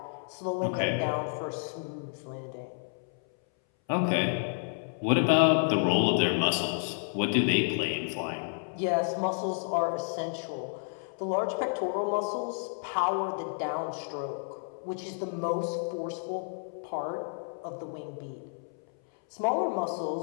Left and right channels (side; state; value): right; silent; 57 dB below the other